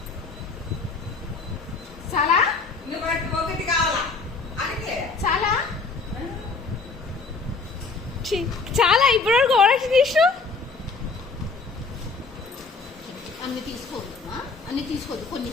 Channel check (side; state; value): right; quieter; 4.3 dB